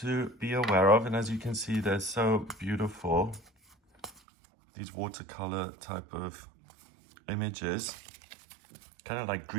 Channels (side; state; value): left; drops out; at 4.2 s